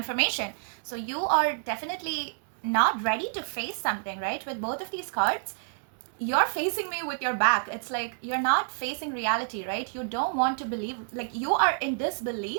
So you are definitely not ready to face something, right? With both of these cards, you're facing me with your back. It's like you're not facing reality, right? You don't want to believe, like you are in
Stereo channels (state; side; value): silent; left; digital silence